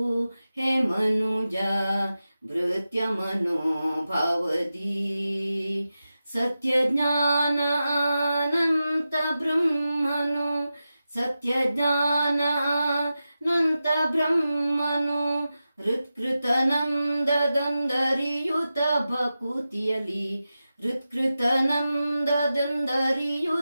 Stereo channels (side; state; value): both; inverted; correlation -0.92